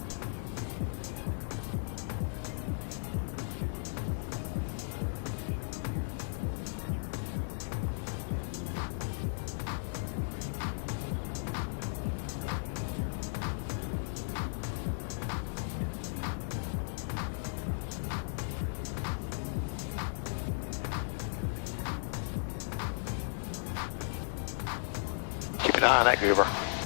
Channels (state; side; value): silent; right; digital silence